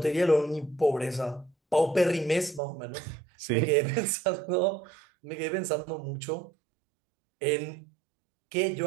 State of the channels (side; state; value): left; drops out; at 2.6 s